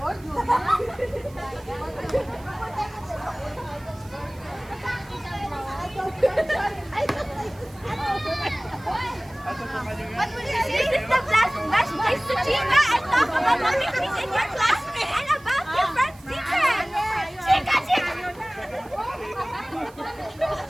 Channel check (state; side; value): noise; right; hiss, 25 dB below the sound